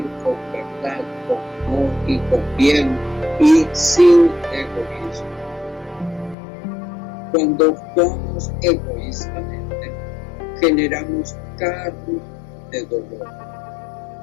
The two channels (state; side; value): drops out; right; at 6.4 s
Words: con verdad, con amor y con bien y sin egoísmo. Cuando actuamos egoístamente, generamos carga de dolor,